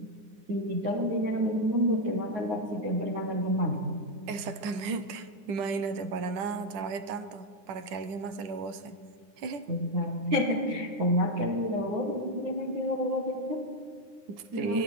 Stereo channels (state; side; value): late; left; 9.8 ms